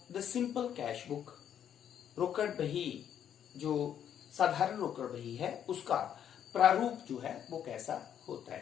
the simple cash book. रोकड़ बही जो साधारण रोकड़ बही है उसका प्रारूप जो है वो कैसा होता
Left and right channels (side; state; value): right; quieter; 9.4 dB